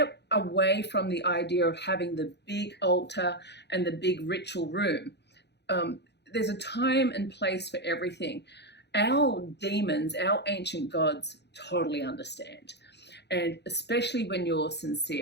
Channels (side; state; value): right; late; 0.50 ms